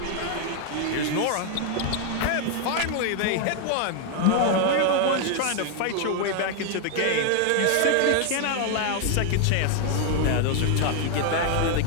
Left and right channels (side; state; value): both; different; correlation 0.00